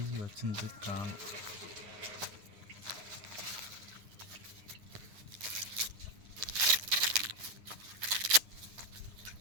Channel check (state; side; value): late; left; 9.8 ms